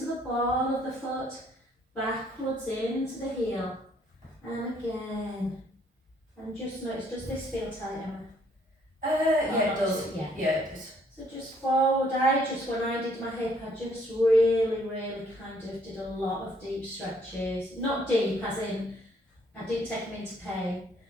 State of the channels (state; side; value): normal; both; correlation 0.65